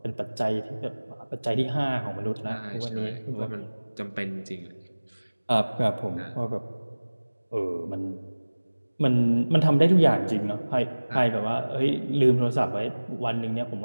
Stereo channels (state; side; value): inverted; both; correlation -1.00